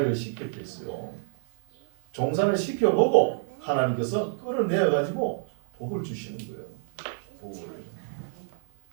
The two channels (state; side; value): silent; left; digital silence